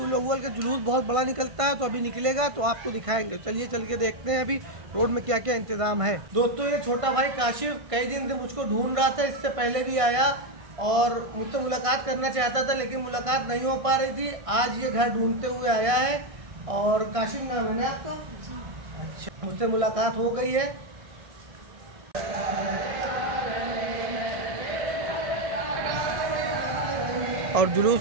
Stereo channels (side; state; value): left; late; 1.5 ms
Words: अव्वल का जुलूस बहुत बड़ा निकलता है, तो अभी निकलेगा तो आपको दिखाएंगे। चलिए चल के देखते हैं अभी रोड में क्या क्या इंतजाम है। दोस्तों, ये छोटा भाई काशिफ कई दिन से मुझको ढूंढ रहा था, इससे पहले भी आया और मुझसे मुलाकात करना चाहता था, लेकिन मुलाकात नहीं हो पा रही थी। आज ये घर ढूंढते हुए आया है। और काशिफ नाम है ना आपका? अच्छा, मुझसे मुलाकात हो गई है। और